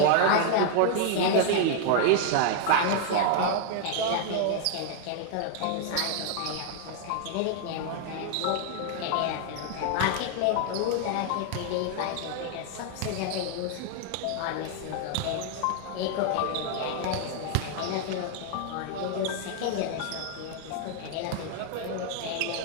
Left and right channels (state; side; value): different; both; correlation 0.00